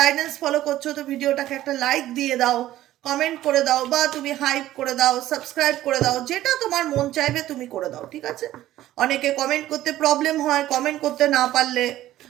ফলো করছো তো ভিডিওটাকে একটা লাইক দিয়ে দাও, কমেন্ট করে দাও, বা তুমি হাইপ করে দাও, সাবস্ক্রাইব করে দাও, যেটা তোমার মন চাইবে তুমি করে দাও, ঠিক আছে। অনেকে কমেন্ট করতে প্রবলেম হয়, কমেন্ট করতে না পারলে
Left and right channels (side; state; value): left; quieter; 14.2 dB